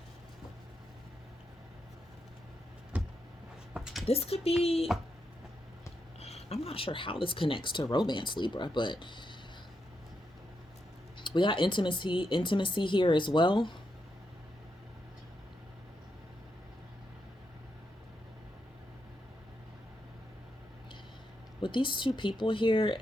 This could be. I'm not sure how this connects to romance, Libra, but we got intimacy here as well. With these two people here,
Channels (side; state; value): both; normal; correlation 0.83